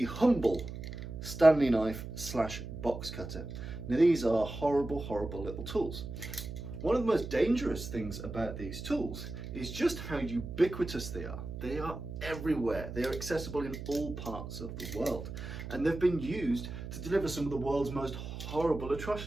humble Stanley knife / box cutter. Now these are horrible little tools. One of the most dangerous things about these tools is just how ubiquitous they are. They are everywhere. They are accessible in all parts of the world. And they've been used to deliver some of the world's most horrible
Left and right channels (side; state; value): right; noise; hum, 8 dB below the sound